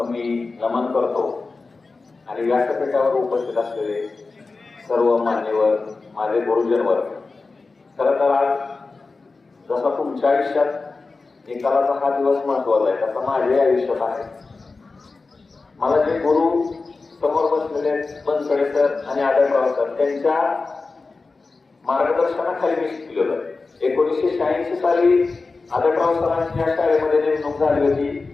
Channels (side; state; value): right; quieter; 3.9 dB